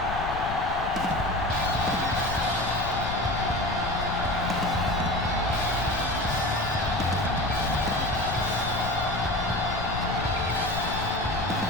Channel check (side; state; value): left; noise; rumble, 7 dB below the sound